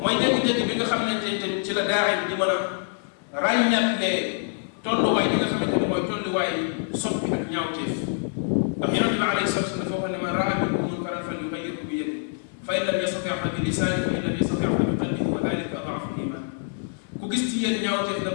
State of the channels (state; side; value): silent; right; 61 dB below the other